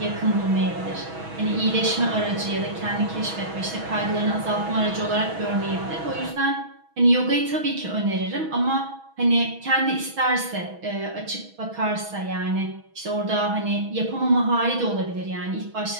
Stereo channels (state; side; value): late; left; 6.2 ms